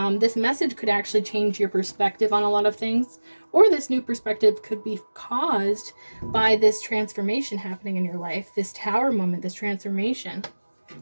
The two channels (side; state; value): both; inverted; correlation -1.00